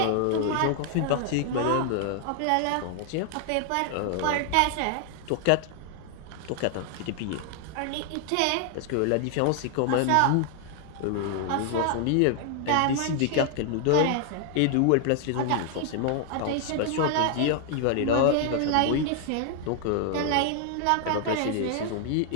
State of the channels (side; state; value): both; different; correlation 0.00